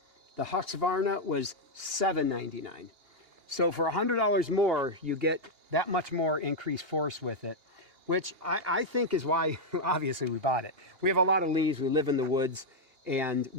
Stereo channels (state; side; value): late; left; 2.8 ms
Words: The Husqvarna was $799. So for $100 more, you get that much more increased force with it, which I think is why, obviously, we bought it. We have a lot of leaves. We live in the woods, and